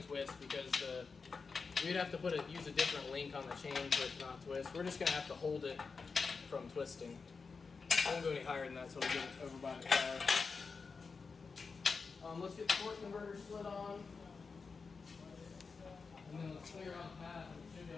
twist because we'd have to use a different link on the chain for it to not twist. We're just gonna have to hold it from twisting. I won't go any higher than that, so we'll get it over by the car. Let's get the torque converter slid on, and then let's clear out the path, and we should be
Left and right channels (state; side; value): quieter; right; 4.8 dB